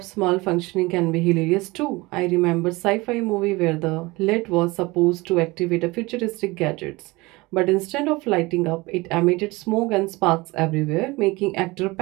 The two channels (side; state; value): left; quieter; 22.5 dB